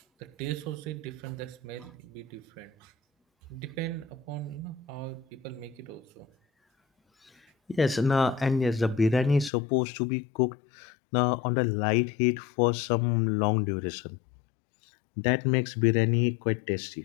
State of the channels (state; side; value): drops out; right; at 9.5 s